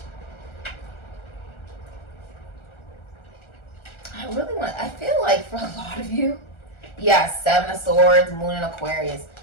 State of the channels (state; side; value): late; right; 1.4 ms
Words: I feel like for a lot of you, yeah, 7 of Swords, Moon in Aquarius,